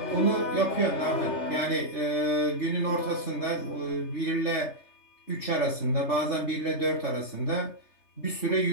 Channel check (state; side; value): late; right; 3.3 ms